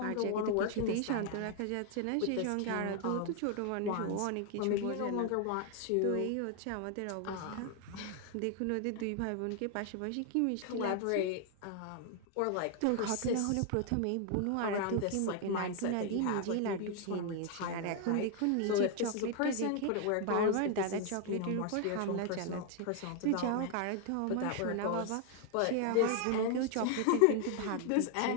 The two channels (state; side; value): different; both; correlation 0.00